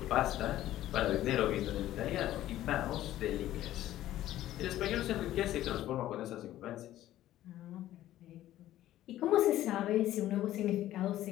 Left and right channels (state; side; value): quieter; right; 13.7 dB